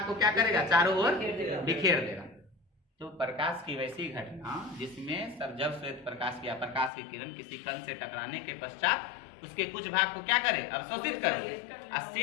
को क्या करेगा, चारों ओर बिखेर देगा। तो प्रकाश की वैसी घटना जिसमें जब श्वेत प्रकाश या प्रकाश की किरण किसी कण से टकराने के पश्चात उसके कुछ भाग को क्या करे, अवशोषित कर ले, और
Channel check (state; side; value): drops out; right; at 6.9 s